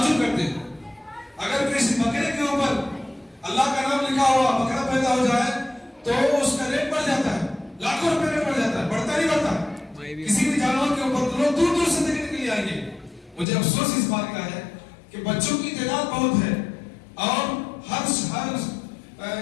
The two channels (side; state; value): right; drops out; at 13.5 s